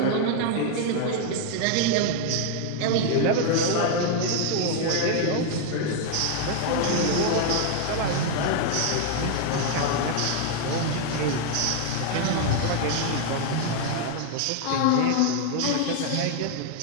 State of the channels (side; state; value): both; different; correlation 0.00